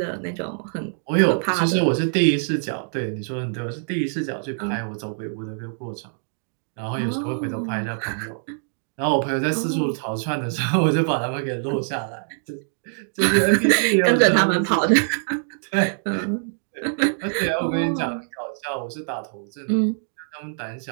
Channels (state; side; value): silent; left; digital silence